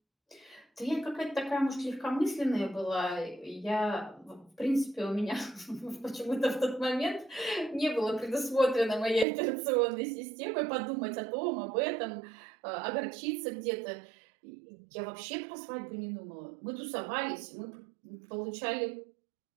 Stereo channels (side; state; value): left; drops out; at 9.2 s